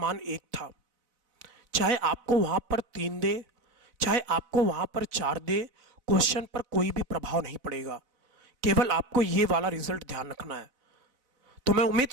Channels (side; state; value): left; late; 4.0 ms